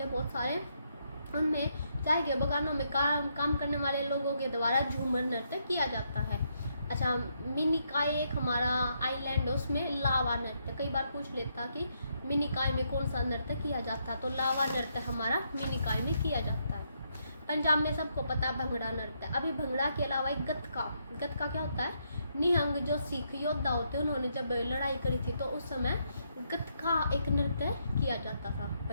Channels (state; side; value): inverted; both; correlation -0.77